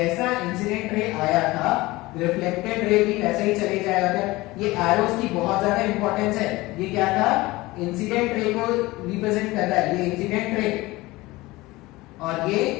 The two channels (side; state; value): right; quieter; 20.2 dB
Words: इंसिडेंट रे आया था रिफ्लेक्टेड रे भी वैसे ही चले जाएगा। ये एरोस की बहुत ज्यादा इंपॉर्टेंस है। ये क्या था, इंसिडेंट रे को रिप्रेजेंट करता है, ये इंसिडेंट रे और ये